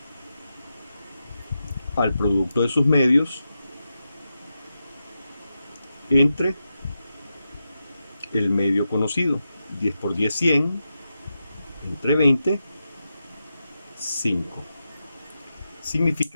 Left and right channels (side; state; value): both; inverted; correlation -0.88